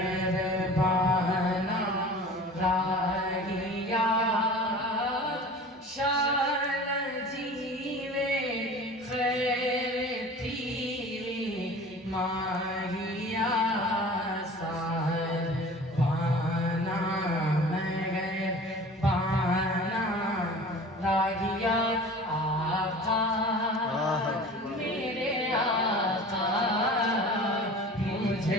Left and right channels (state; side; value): normal; both; correlation 0.40